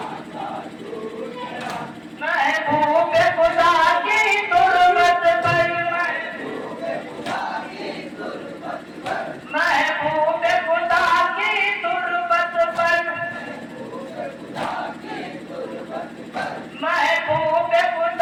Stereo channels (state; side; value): identical; both; correlation 1.00